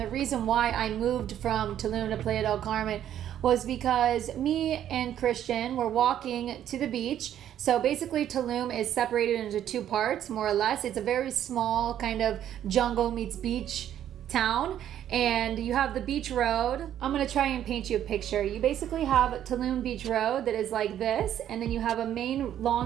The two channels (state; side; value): quieter; left; 10.8 dB